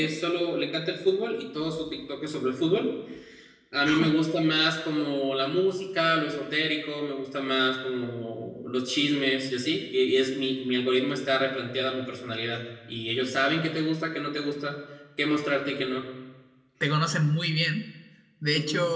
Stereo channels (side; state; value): both; identical; correlation 1.00